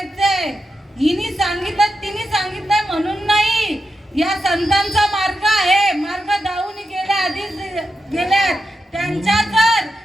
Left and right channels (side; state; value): both; normal; correlation 0.88